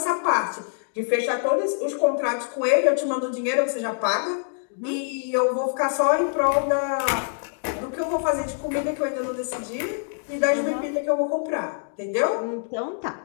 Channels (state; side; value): silent; right; 62 dB below the other